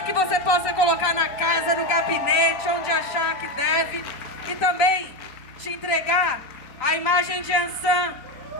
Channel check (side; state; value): right; late; 3.8 ms